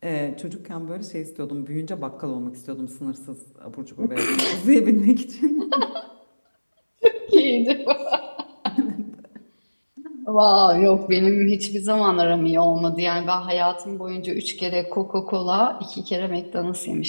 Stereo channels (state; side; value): inverted; both; correlation -1.00